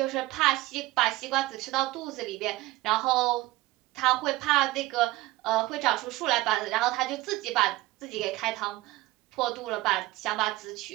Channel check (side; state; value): left; quieter; 18.7 dB